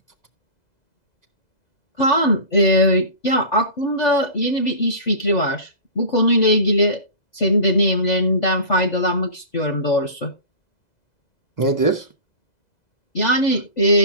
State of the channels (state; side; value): late; right; 2.0 ms